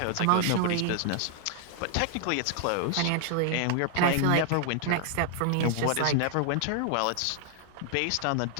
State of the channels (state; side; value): different; both; correlation 0.00